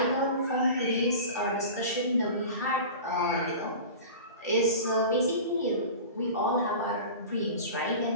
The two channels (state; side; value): inverted; both; correlation -0.34